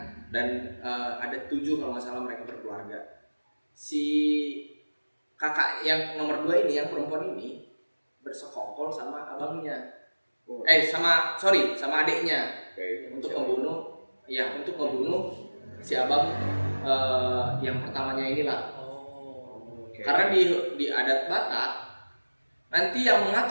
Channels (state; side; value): inverted; both; correlation -1.00